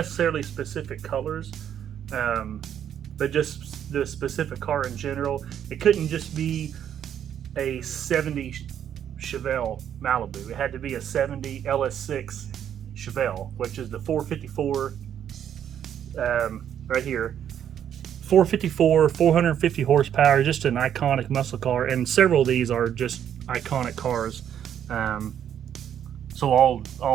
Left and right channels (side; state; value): left; quieter; 9.5 dB